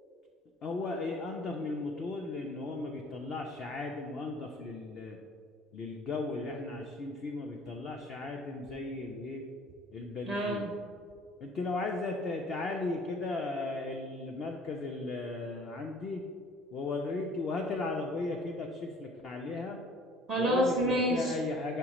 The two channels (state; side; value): normal; both; correlation 0.52